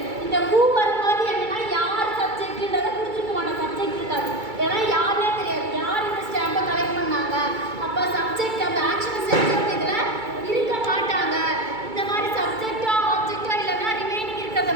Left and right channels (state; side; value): late; left; 2.3 ms